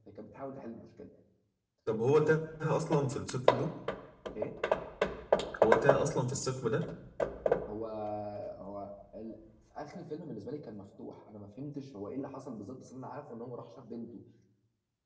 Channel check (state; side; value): identical; both; correlation 1.00